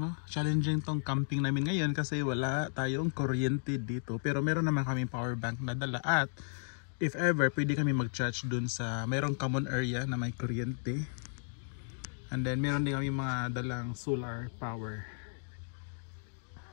no? Challenging tong camping namin ngayon kasi wala tayong kuryente dito. Pero meron naman kami power bank na dala at if ever, pwede kami mag-charge dun sa mayroong common area na may kuryente. And then meron din kami mga dalang solar power.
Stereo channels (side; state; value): right; silent; digital silence